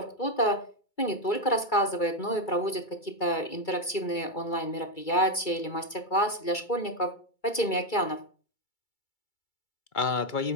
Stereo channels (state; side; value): late; right; 2.3 ms